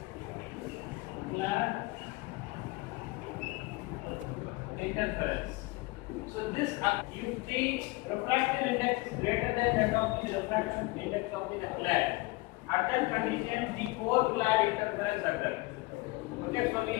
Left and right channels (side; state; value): right; quieter; 23.0 dB